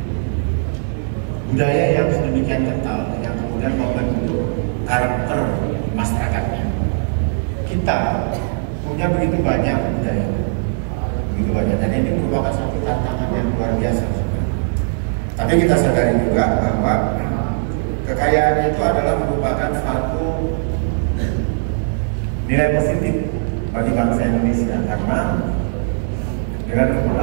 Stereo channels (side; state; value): left; silent; 66 dB below the other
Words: budaya yang sedemikian kental yang kemudian membentuk karakter masyarakatnya. Kita punya begitu banyak budaya, dan ini merupakan satu tantangan yang luar biasa. Tapi kita sadari juga bahwa kekayaan itu adalah merupakan suatu nilai positif bagi bangsa Indonesia, karena